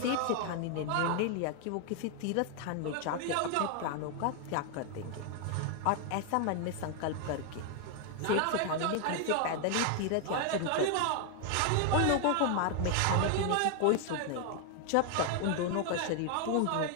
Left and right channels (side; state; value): both; different; correlation 0.00